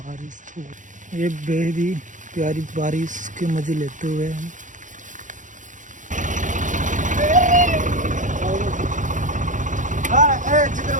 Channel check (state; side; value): late; left; 0.37 ms